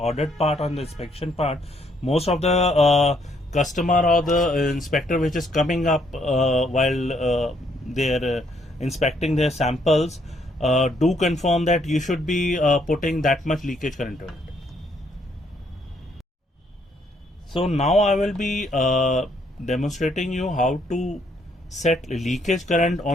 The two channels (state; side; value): normal; both; correlation 0.70